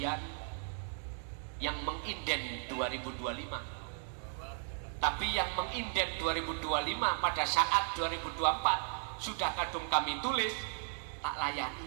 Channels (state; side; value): silent; left; 54 dB below the other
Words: yang menginden 2025. Tapi yang menginden 2025 pada saat 2024 sudah kadung kami tulis tak